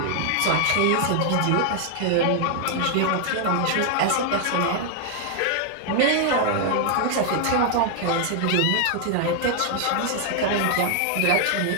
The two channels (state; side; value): different; both; correlation 0.00